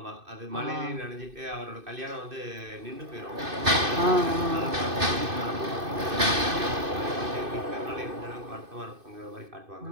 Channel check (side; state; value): left; late; 2.6 ms